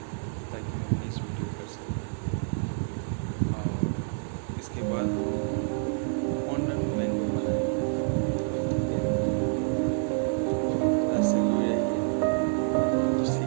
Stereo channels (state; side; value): silent; left; digital silence